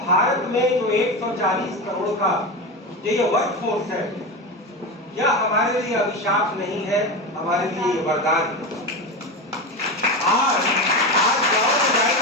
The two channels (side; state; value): both; normal; correlation 0.20